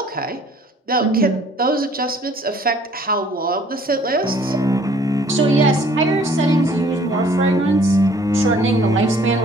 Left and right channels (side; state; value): both; normal; correlation 0.56